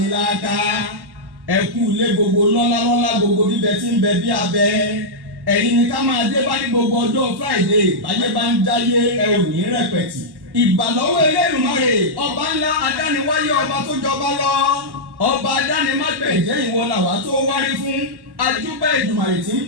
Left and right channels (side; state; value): left; late; 1.1 ms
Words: ẹ̀kú ilé gbogbo lọ́lá gbogbo bíbẹ tí ń bẹ bí abẹ ẹ̀yin ni ká máa dé bá ní gbogbo ọjọ́ Friday báyé bá ń jáyé ẹ ò ní rẹpẹ̀tì ìbàlọ́wọ́ Elédùmarè ọba ńlá adániwáyé ọba tó jọba lọ ọba adánimágbẹ̀jẹ́ ìwọ làwa tó wárí fún ajúbà Èdùmàrè tí ń